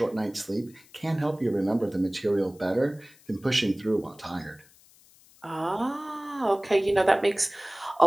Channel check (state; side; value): noise; left; hiss, 27 dB below the sound